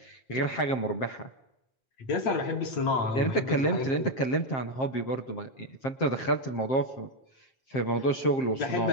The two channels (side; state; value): right; late; 7.6 ms